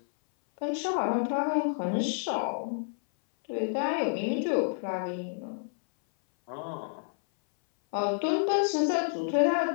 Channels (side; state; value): right; silent; 58 dB below the other